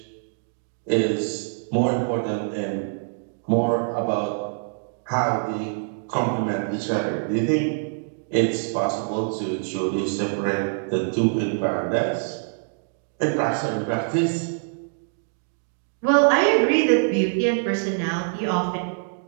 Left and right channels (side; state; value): left; silent; digital silence